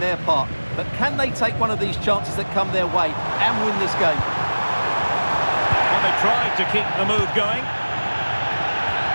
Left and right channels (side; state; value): both; inverted; correlation -1.00